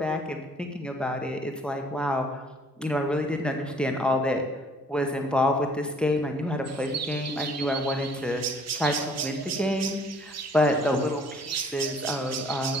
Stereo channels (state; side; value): normal; both; correlation 0.58